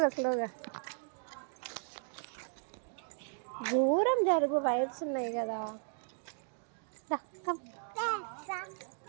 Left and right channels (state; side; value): silent; left; 54 dB below the other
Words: స్లోగా దూరం జరుగు, వైర్స్ ఉన్నాయి కదా.